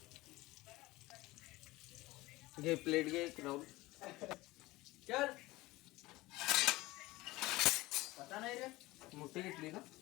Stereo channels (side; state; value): right; quieter; 19.7 dB